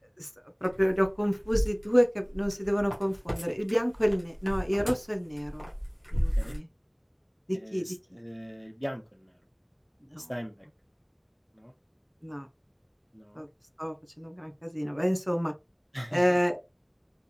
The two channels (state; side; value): identical; both; correlation 1.00